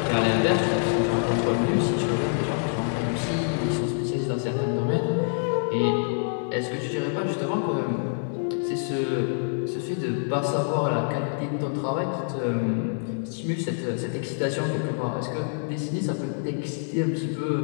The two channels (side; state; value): right; silent; digital silence